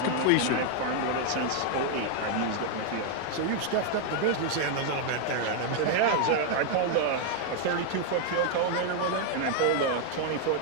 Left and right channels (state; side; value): different; both; correlation 0.00